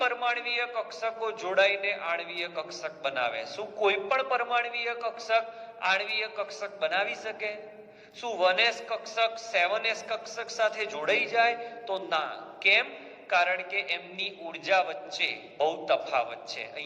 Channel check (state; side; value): identical; both; correlation 1.00